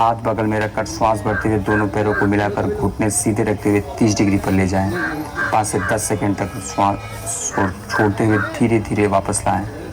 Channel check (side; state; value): both; identical; correlation 1.00